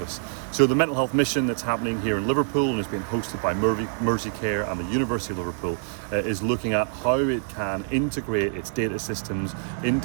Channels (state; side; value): silent; left; 56 dB below the other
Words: So the mental health mission that's happening here in Liverpool and is being hosted by M-RIC Care and the University of Liverpool is looking at how it can integrate its data systems,